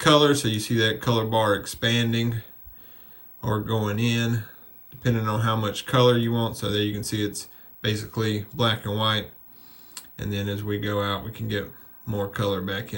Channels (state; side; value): identical; both; correlation 1.00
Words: so you see that color bar expanding or going in, depending on how much color you want. So there you can see it's basically black and white, and then as we go out we can get more color back